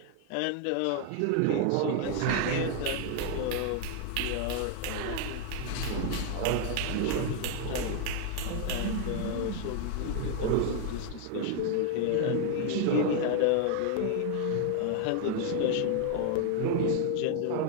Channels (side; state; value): both; different; correlation 0.00